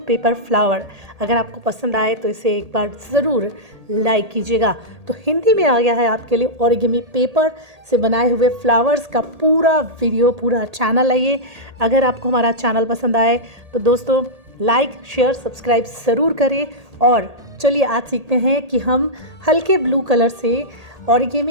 पेपर फ्लावर। अगर आपको पसंद आए तो इसे एक बार ज़रूर लाइक कीजिएगा। तो हिंदी में आ गया है आपके लिए ओरिगेमी पेपर से बनाए हुए फ्लावर्स का पूरा वीडियो, पूरा चैनल है ये। अगर आपको हमारा चैनल पसंद आए तो दोस्तों लाइक शेयर सब्सक्राइब ज़रूर करें। और चलिए आज सीखते हैं कि हम हल्के ब्लू कलर से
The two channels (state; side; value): late; left; 1.8 ms